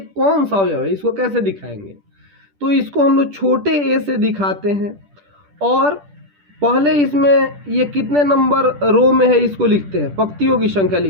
कौन सा अवयव है, इसको कैसे दिखाएंगे। तो इसको हम लोग छोटे ए से दिखाते हैं, और पहले इसमें ये कितने नंबर रो में है इसको लिखते हैं, पंक्तियों की संख्या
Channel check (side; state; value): left; late; 10 ms